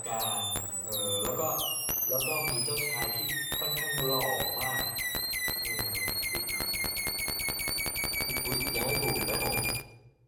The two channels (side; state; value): both; identical; correlation 1.00